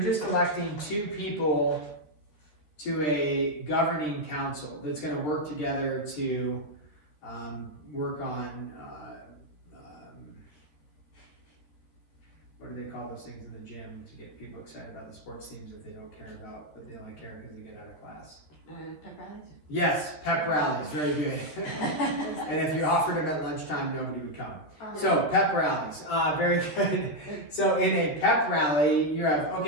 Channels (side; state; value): right; late; 13 ms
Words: just electing two people to a governing council that's going to work together to work on, what do they call those things in the gym to get people excited about the sports teams that they don't care about, but they only care because they get out of class? Pep rallies? Yes, pep rallies, very good. And if you offered them at lunchtime, nobody would come. So pep rallies, very good. So in a pep rally, you have,